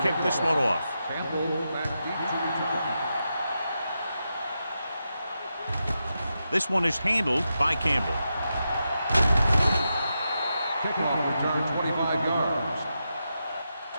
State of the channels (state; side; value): inverted; both; correlation -0.87